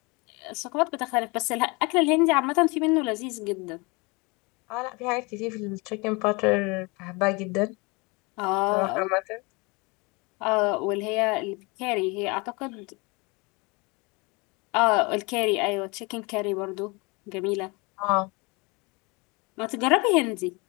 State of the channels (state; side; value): quieter; right; 27.5 dB